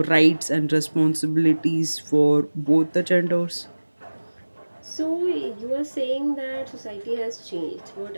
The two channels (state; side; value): inverted; both; correlation -1.00